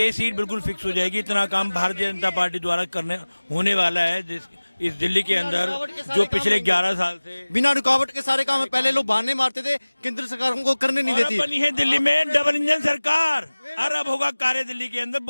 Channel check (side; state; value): both; inverted; correlation -1.00